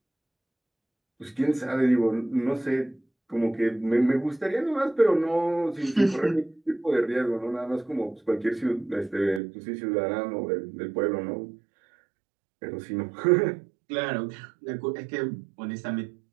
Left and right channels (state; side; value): drops out; left; at 9.4 s